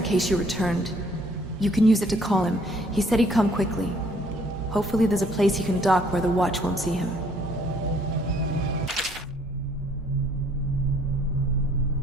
case you returned. You can use it to call him. He said he'd come quickly. Hopefully there's a place he can dock where the watch won't see him.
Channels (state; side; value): normal; both; correlation 0.62